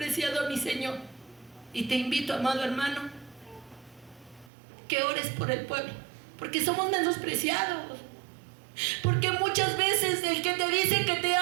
a mi Señor. Y te invito, amado hermano, que ores por el pueblo, porque somos menospreciados. Porque muchas veces el que te dice que te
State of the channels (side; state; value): left; drops out; at 4.5 s